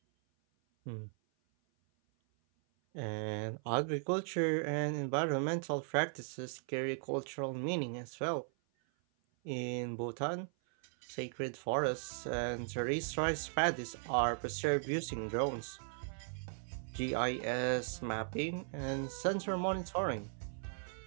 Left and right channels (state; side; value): silent; left; 53 dB below the other